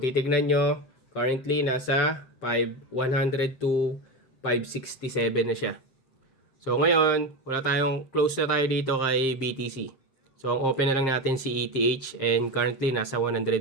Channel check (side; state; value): right; late; 7.6 ms